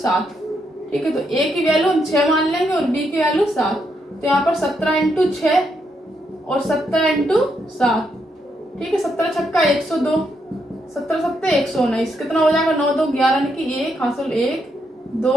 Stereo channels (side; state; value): both; normal; correlation 0.79